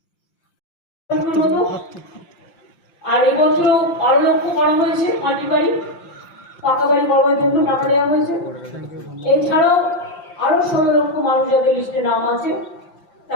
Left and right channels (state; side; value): late; right; 5.8 ms